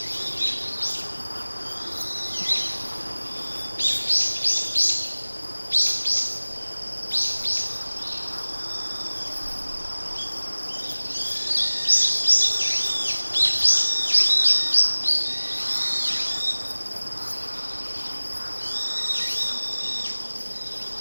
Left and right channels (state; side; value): inverted; both; correlation -1.00